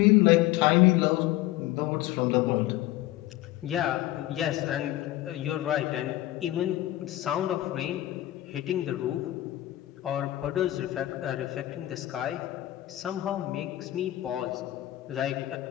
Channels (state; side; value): quieter; right; 15.6 dB